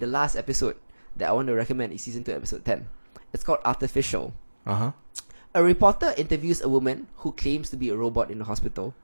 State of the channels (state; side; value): inverted; both; correlation -1.00